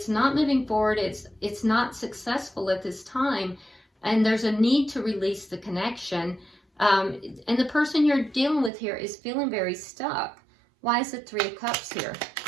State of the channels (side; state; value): left; drops out; at 8.7 s